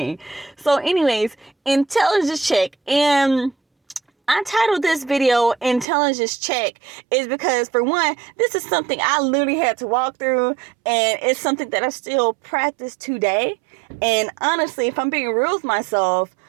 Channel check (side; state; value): left; drops out; at 5.9 s